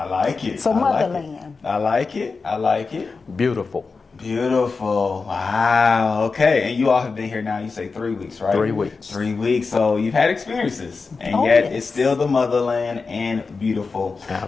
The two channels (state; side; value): quieter; right; 4.5 dB